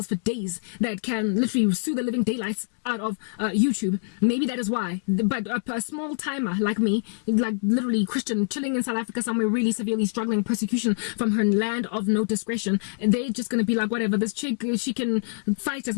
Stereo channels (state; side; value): silent; right; digital silence